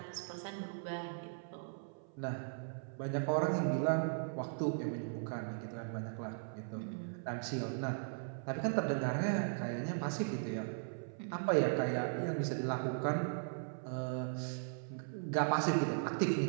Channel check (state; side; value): silent; left; 52 dB below the other